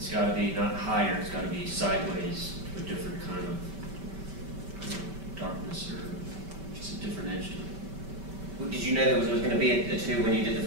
got to be not higher, it's got to be sideways to a different kind of darkness or just a different edge to it. Well, did you know there was going to be a 2 when you did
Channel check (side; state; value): left; late; 5.2 ms